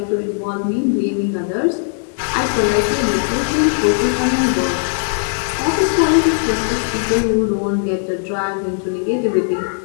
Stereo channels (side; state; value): right; silent; digital silence